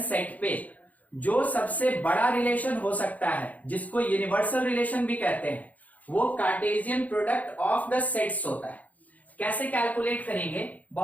सेट पे जो सबसे बड़ा रिलेशन हो सकता है, जिसको यूनिवर्सल रिलेशन भी कहते हैं, वो Cartesian product of the sets होता है। कैसे कैलकुलेट करेंगे?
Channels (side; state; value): right; late; 0.075 ms